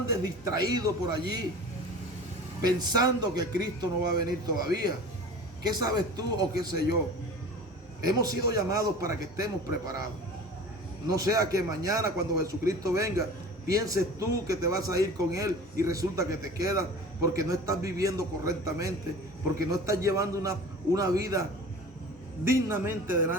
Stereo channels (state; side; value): normal; both; correlation 0.39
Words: distraído por allí, pensando que Cristo no va a venir todavía. ¿Qué sabes tú o qué sé yo? Hemos sido llamados para que estemos preparados. No sea que mañana cuando Jesucristo venga, pienses tú que te vas a ir con Él y resulta que te quedas porque no estás viviendo correctamente, porque no estás llevando una vida dignamente